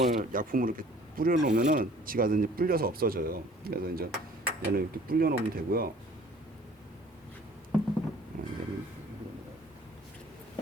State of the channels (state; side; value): normal; both; correlation 0.53